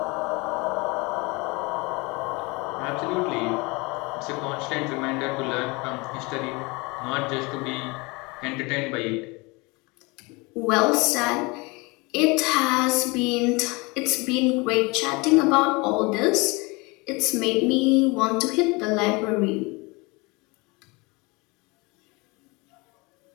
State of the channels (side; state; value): right; quieter; 26.4 dB